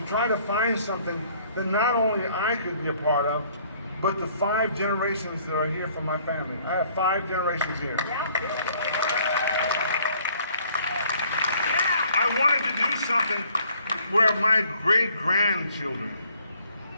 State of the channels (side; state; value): both; inverted; correlation -0.60